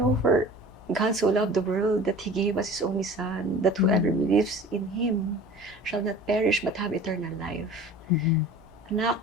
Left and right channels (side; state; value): both; normal; correlation 0.42